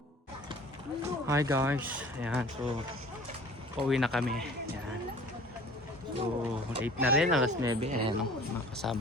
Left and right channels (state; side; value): normal; both; correlation 0.47